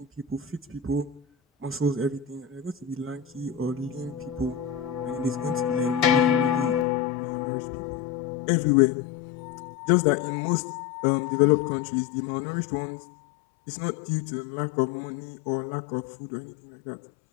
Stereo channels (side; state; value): right; drops out; at 6.9 s